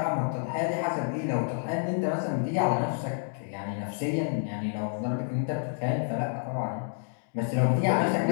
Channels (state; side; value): silent; right; digital silence